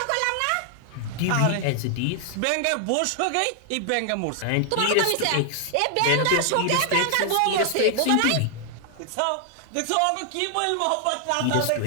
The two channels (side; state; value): both; different; correlation 0.00